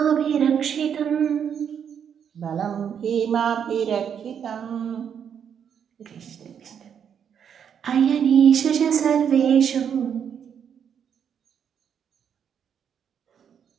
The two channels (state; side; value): quieter; left; 8.0 dB